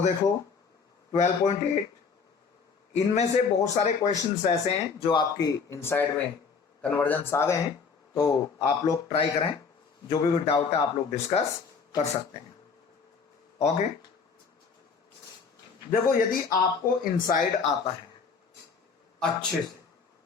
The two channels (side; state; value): right; quieter; 5.5 dB